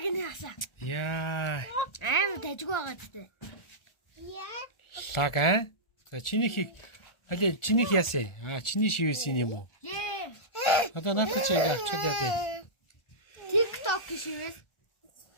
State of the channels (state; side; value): late; right; 1.4 ms